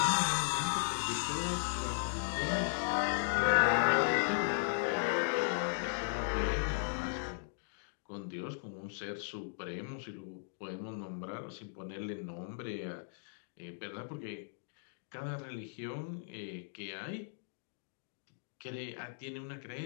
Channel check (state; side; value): silent; right; digital silence